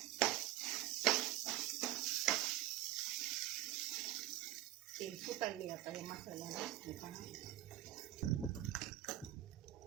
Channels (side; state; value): left; quieter; 14.5 dB